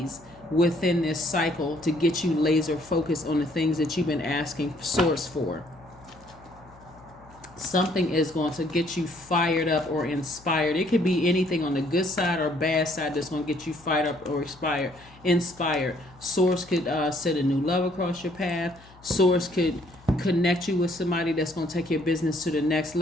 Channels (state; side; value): noise; left; hum, 24 dB below the sound